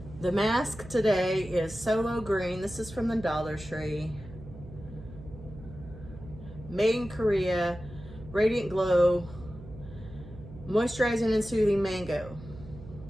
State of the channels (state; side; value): noise; right; hum, 16 dB below the sound